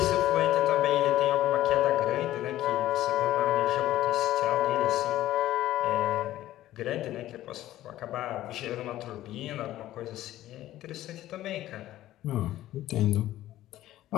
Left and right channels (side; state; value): right; quieter; 14.3 dB